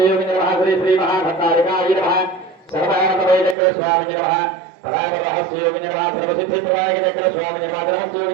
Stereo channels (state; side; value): drops out; left; at 3.6 s